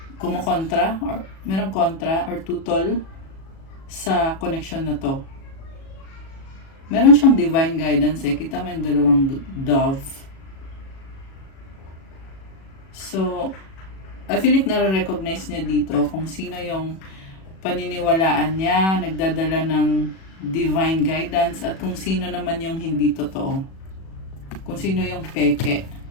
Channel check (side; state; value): right; late; 37 ms